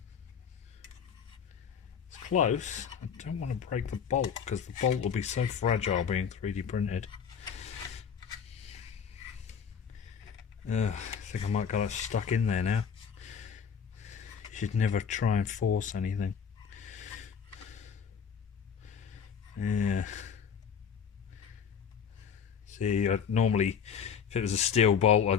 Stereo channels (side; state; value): right; quieter; 7.2 dB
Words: It's close. I don't want to break the bolt because the bolt will be so fragile being 3D printed. I think I might got it stuck in there now. You should never try and force anything. Yeah. See, I'd normally, if it was a steel bolt,